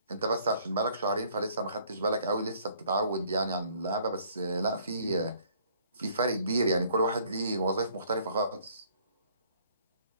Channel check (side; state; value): both; inverted; correlation -0.60